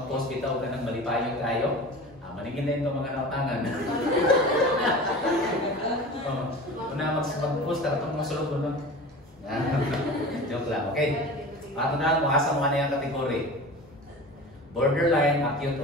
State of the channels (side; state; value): both; normal; correlation 0.35